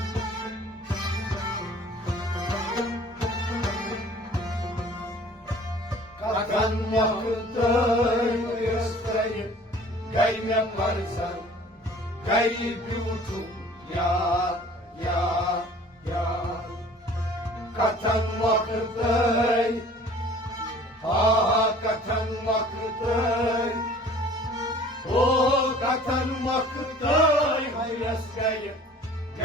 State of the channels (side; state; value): both; normal; correlation 0.49